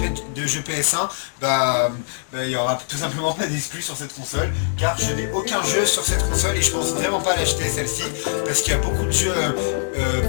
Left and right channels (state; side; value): silent; right; digital silence